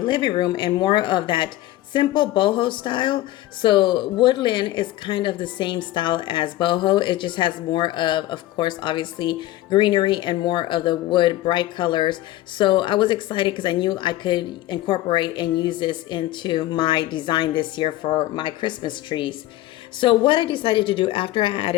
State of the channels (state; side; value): quieter; right; 15.7 dB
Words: room in more of that simple boho style. So woodland is kind of the same style as boho. It just has more of course, obviously greenery and more of the wood bright colors. So I was excited because I knew I could incorporate and use this into my design this year for my Christmas trees. So what I decided to do after I